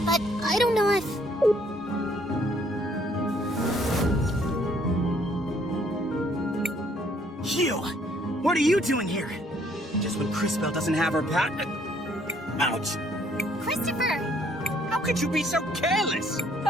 but I don't know if... You! What are you doing here? Just when Crisbell doesn't have her ouch! Christopher! How could you be so careless?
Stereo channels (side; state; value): both; normal; correlation 0.64